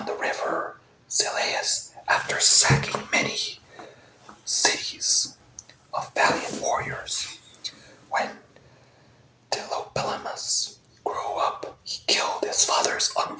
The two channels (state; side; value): identical; both; correlation 1.00